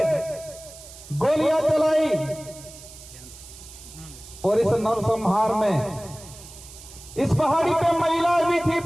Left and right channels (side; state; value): right; noise; hiss, 17 dB below the sound